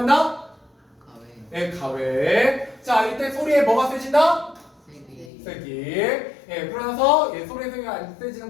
가외. 가외. 자, 이때 소리에 뭐가 세진다? 세기. 그러나서 소리의 세기가 안 세지는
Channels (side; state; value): right; drops out; at 5.3 s